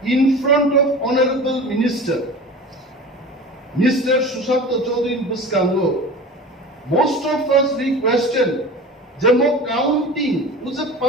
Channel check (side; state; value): both; normal; correlation 0.35